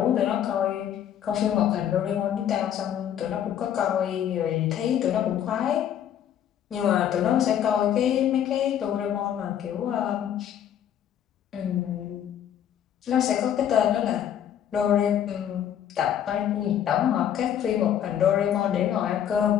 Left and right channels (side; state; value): right; quieter; 9.9 dB